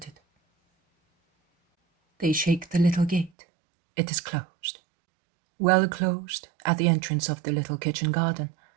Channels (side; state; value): left; drops out; at 3.3 s